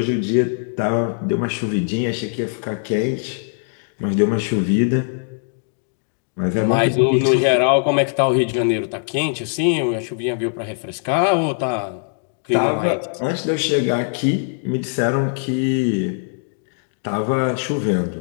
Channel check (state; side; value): silent; right; digital silence